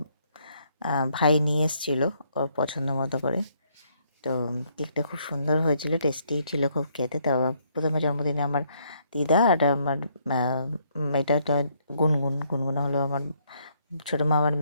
ভাই নিয়ে এসেছিলো ওর পছন্দ মতো করে। তো কেকটা খুব সুন্দর হয়েছিল, টেস্টি ছিল খুব খেতে। তারপর প্রথমে জন্মদিনে আমার দিদা আর আমার এটা গুনগুন হলো আমার ছোটো মামার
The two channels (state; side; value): inverted; both; correlation -0.70